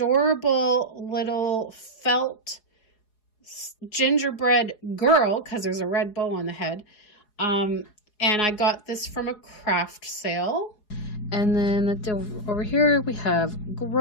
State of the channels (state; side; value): late; right; 4.8 ms